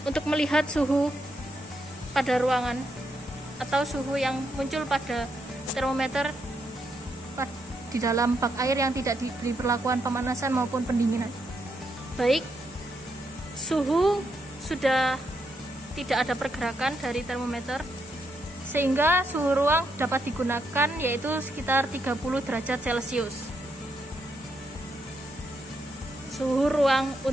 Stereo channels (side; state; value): both; normal; correlation 0.79